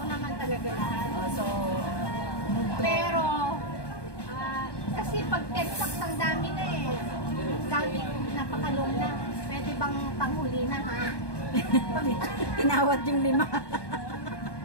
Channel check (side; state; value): right; late; 1.2 ms